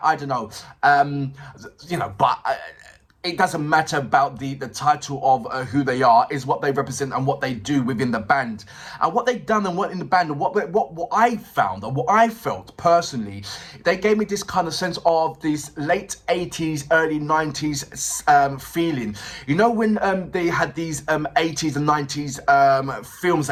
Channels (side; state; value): both; identical; correlation 1.00